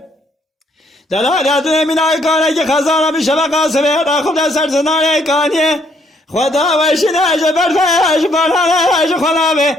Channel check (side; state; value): both; normal; correlation 0.69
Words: دلال من ايقانه خزانه بشبقه سبيل خدا سرزنان ايقانه خدا وشنا جبر فاش برهاش خلابه